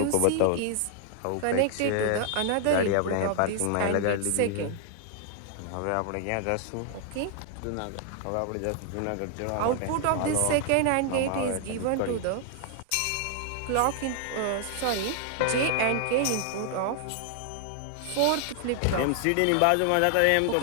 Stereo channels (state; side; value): different; both; correlation 0.00